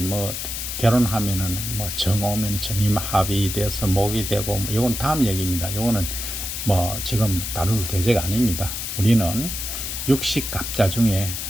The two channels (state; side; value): noise; left; hiss, 5 dB below the sound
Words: 결혼하면은 뭐 정 오면 정이 합의돼서 목이 되고, 뭐 이건 다음 얘기입니다. 이거는 뭐 지금 다룰 계제가 아닙니다. 우리는 육식갑자 중에